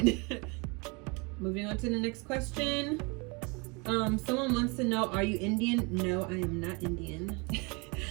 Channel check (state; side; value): quieter; left; 29.7 dB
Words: Moving on to the next question. Someone wants to know, are you Indian? No, I am not Indian.